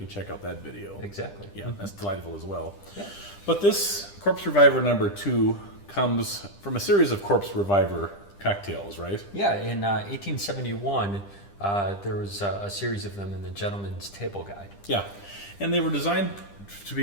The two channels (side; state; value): right; late; 10 ms